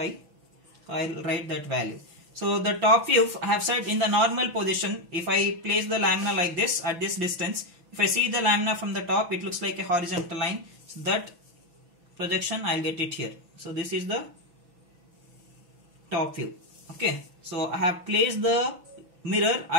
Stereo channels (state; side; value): late; left; 6.0 ms